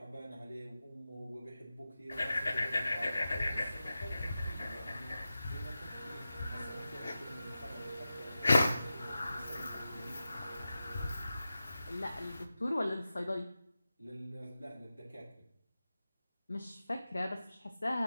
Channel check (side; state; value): both; inverted; correlation -0.93